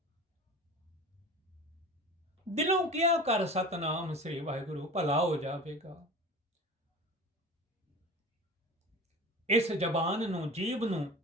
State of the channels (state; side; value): normal; both; correlation 0.36